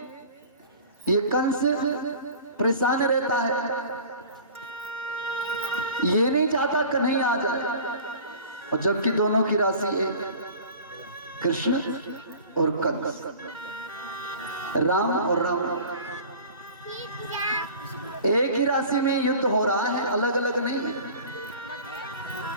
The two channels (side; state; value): both; inverted; correlation -0.41